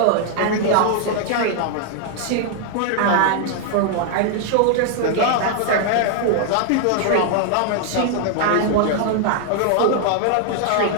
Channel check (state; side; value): different; both; correlation 0.00